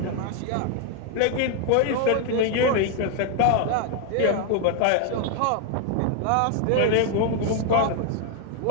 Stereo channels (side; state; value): both; different; correlation 0.00